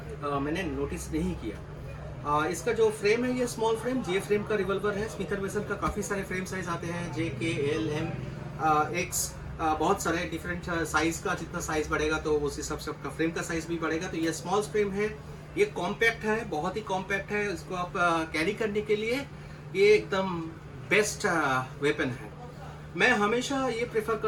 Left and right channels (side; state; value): both; identical; correlation 1.00